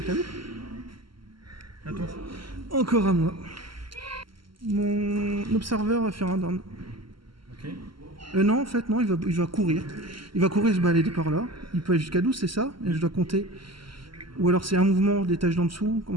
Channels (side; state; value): left; late; 0.74 ms